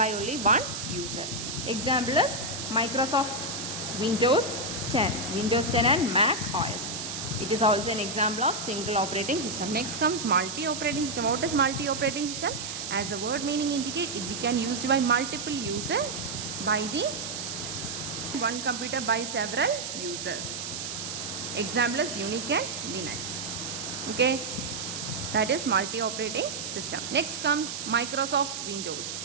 only one user. Example is Microsoft Windows 10 and Mac OS. It is also an example of single operating system. Next comes multi-operating system. What is multi-operating system? As the word meaning indicate, it can used by multiple users by the one computer by several users. Example is Unix and Linux. Okay, that is multi-operating system. Next comes Microsoft Windows.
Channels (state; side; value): noise; right; hiss, 6 dB below the sound